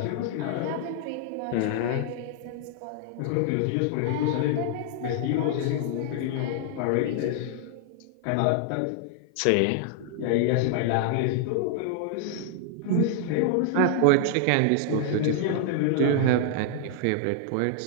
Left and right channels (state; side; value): different; both; correlation -0.01